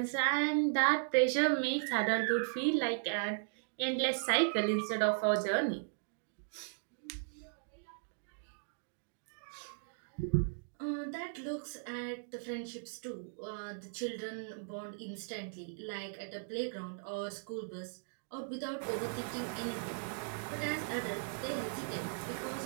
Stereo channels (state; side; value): silent; left; digital silence